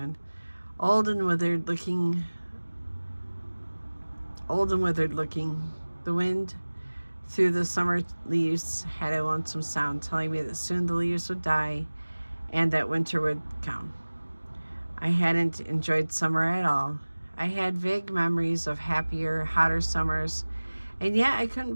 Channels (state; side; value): inverted; both; correlation -1.00